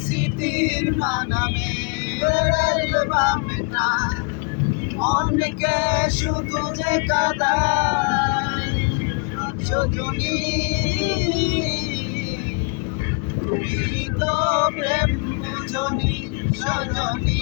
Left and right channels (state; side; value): quieter; right; 35.6 dB